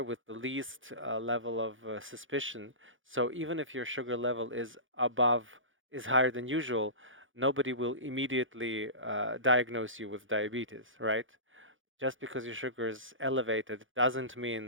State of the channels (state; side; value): late; left; 0.57 ms